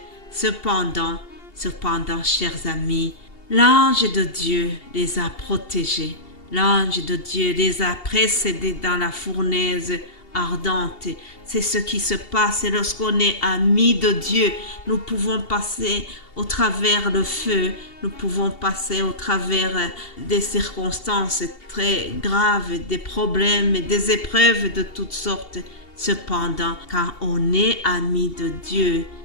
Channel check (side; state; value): right; late; 2.7 ms